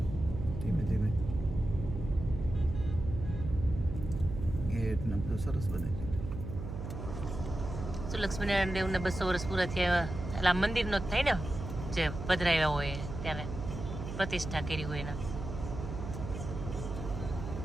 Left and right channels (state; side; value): noise; right; hum, 7 dB below the sound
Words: ધીમે ધીમે. ગેટ ને બધું સરસ બને છે. શું લક્ષ્મીનારાયણ દેવને 200 વર્ષ પૂરા થયા એટલે આ મંદિરનો જ થાય ને, જે પધરાવ્યા હોય ત્યારે પ્રતિષ્ઠા કરી હોય એના.